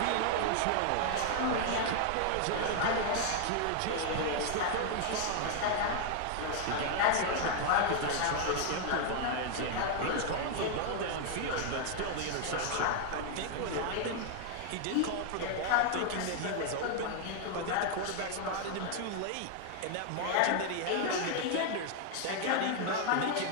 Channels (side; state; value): both; different; correlation 0.00